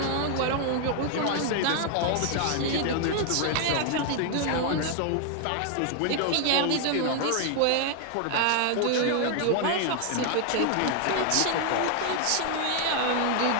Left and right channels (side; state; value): both; different; correlation 0.00